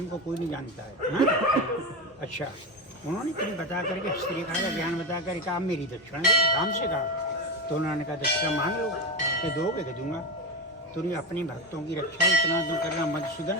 को कोई नहीं जानता है। हाँ? अच्छा, उन्होंने तुम्हें बता करके हस्तरेखा का ज्ञान बता कर कहा मेरी दक्षिणा दो, राम से कहा। तो उन्होंने कहा दक्षिणा मांग लो, मैं दोगे कि दूंगा। तुमने अपने भक्तों की रक्षा इतना दूर करना मधुसूदन,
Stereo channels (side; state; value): both; normal; correlation 0.17